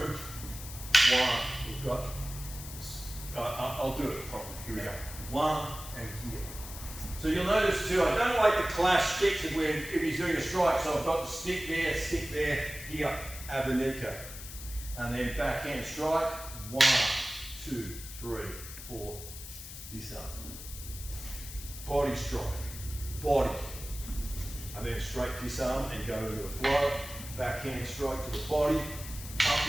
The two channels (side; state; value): left; noise; hiss, 12 dB below the sound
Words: one, we've got, I'll do it properly, here we go. One and here. So you'll notice too, I don't like to clash sticks if he's doing a strike, so I've got the stick there, here, Abanico. And then backhand strike, 1, 2, 3, 4, this up. Body strike, body. And then straight disarm and go into the flow. Backhand strike to the body,